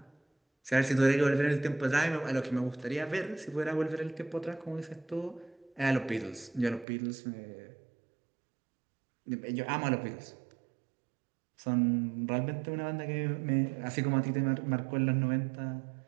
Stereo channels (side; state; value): left; drops out; at 6.9 s